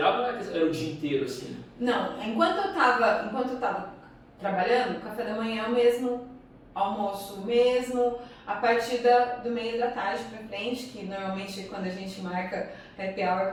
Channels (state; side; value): identical; both; correlation 1.00